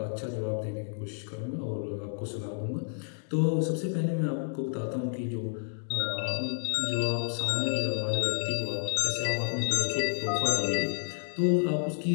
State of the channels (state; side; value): silent; right; digital silence